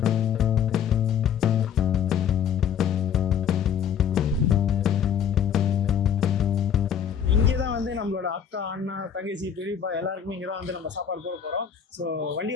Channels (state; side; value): quieter; right; 8.2 dB